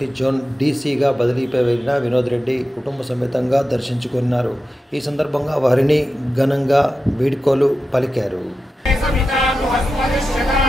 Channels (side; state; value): both; normal; correlation 0.92